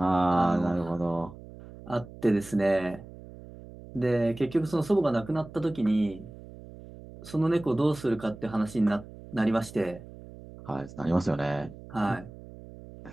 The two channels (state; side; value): noise; right; hum, 17 dB below the sound